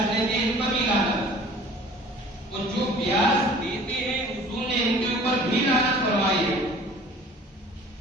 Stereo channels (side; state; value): both; normal; correlation 0.48